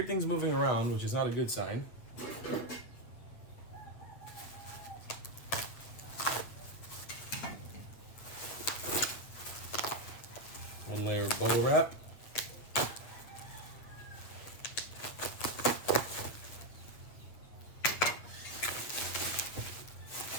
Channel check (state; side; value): late; right; 8.3 ms